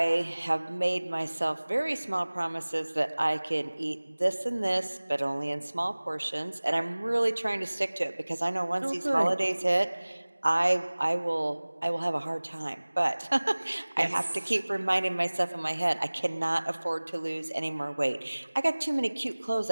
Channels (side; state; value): both; inverted; correlation -1.00